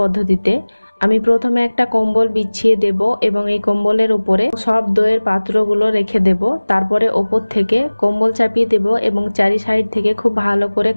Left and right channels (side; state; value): both; inverted; correlation -1.00